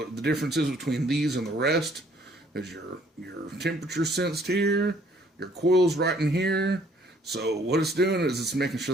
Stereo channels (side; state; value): both; normal; correlation 0.61